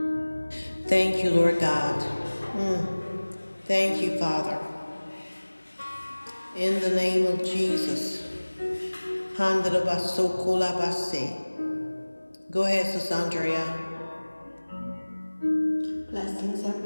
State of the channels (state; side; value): inverted; both; correlation -1.00